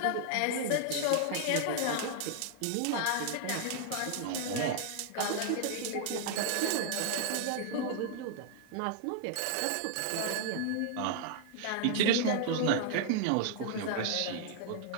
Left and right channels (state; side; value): different; both; correlation 0.00